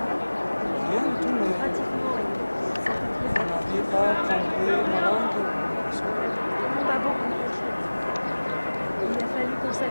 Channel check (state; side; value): inverted; both; correlation -1.00